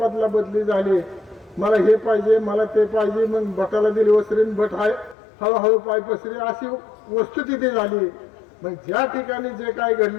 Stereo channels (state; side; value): drops out; right; at 5.2 s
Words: झाली, मला हे पाहिजे मला ते पाहिजे, मग भटाला दिली वसरीन भट हळूहळू पाय पसरी अशी वस्तुस्थिती झाली। मग ज्या ठिकाणी जे काय